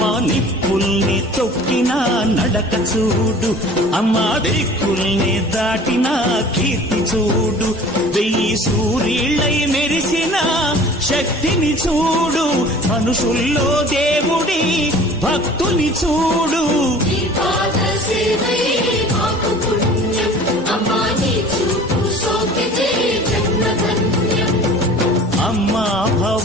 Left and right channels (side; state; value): both; normal; correlation 0.45